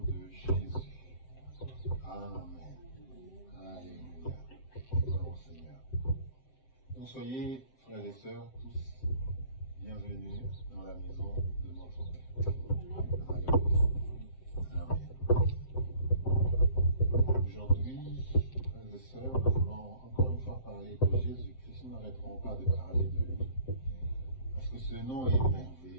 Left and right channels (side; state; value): right; late; 7.7 ms